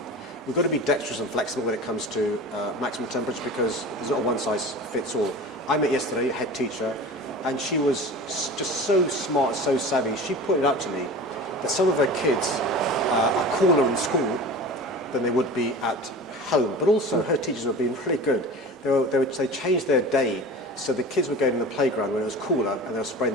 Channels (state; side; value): normal; both; correlation 0.35